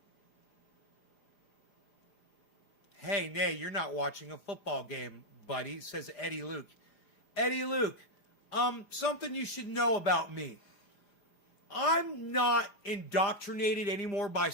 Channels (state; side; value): late; right; 4.9 ms